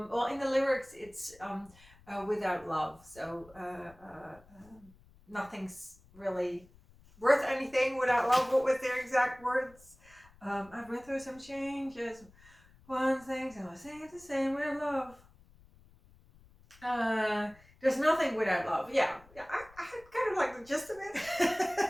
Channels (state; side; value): noise; left; rumble, 26 dB below the sound